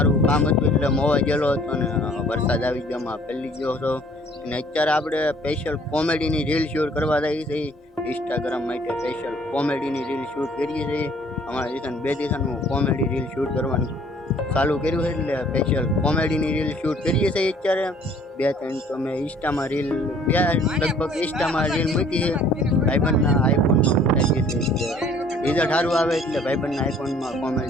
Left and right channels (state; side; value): normal; both; correlation 0.56